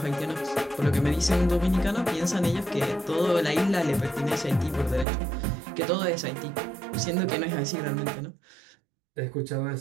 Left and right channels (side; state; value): left; drops out; at 5.1 s